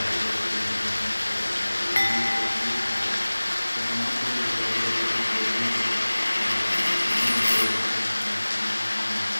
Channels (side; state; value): both; inverted; correlation -1.00